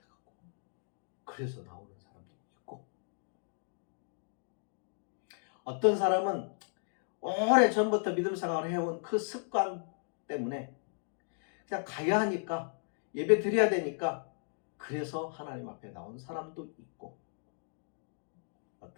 그래서 나오는 사람도 있고, 어떤 사람은 오래전부터 믿음 생활을 해온 그 습관 때문에 그냥 가야 하니까 예배 드려야 되니까 그래서 하나님 앞에 나온 사람도 있고,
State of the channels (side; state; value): right; silent; digital silence